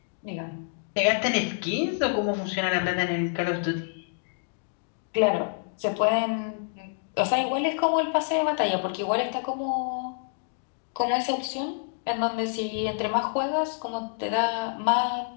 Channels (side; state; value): right; silent; digital silence